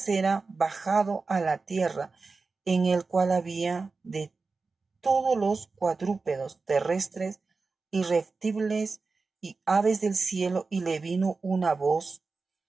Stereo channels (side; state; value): left; quieter; 4.1 dB